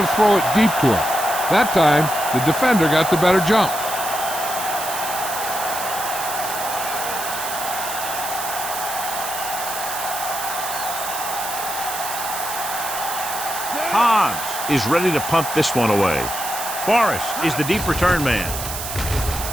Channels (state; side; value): noise; right; hiss, 6 dB below the sound